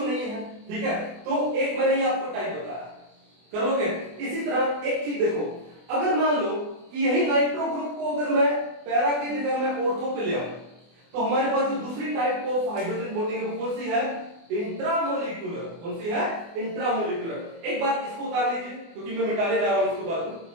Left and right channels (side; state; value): left; late; 24 ms